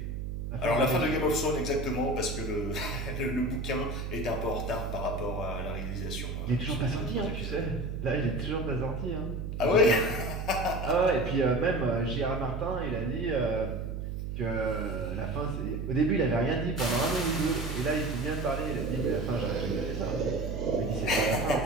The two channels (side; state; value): right; noise; hum, 4 dB below the sound